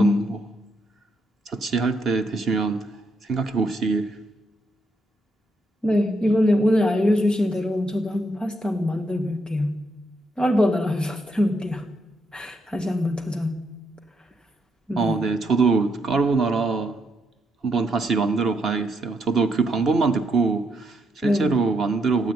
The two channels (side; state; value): both; normal; correlation 0.77